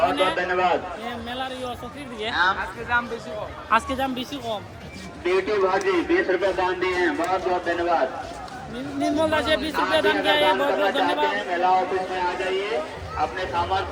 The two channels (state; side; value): identical; both; correlation 1.00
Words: बहुत धन्यवाद। মেলার সক্রিয় দিয়ে আজকে দাম বেশি কম। बेटी भाजी 20 रुपए दान दिए हैं, बहुत बहुत धन्यवाद। निर्मल राजे 20 रुपए दान किया है, बहुत बहुत धन्यवाद। मेला ऑफिस में आ जाइए, अपने सामान